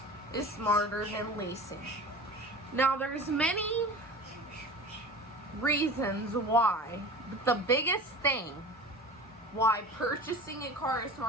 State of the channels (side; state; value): both; normal; correlation 0.37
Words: is smarter than leasing. Now, there's many reasons why, but the biggest thing why purchasing a car is